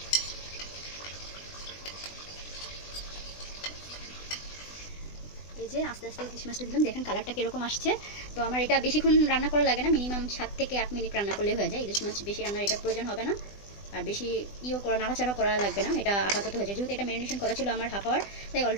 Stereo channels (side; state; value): right; late; 20 ms